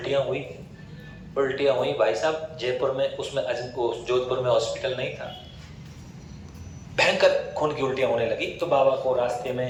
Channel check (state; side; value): identical; both; correlation 1.00